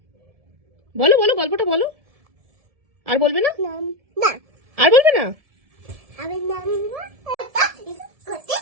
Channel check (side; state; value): left; late; 1.7 ms